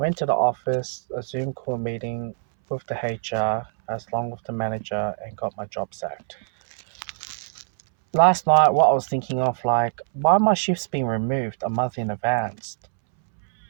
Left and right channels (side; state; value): left; silent; 63 dB below the other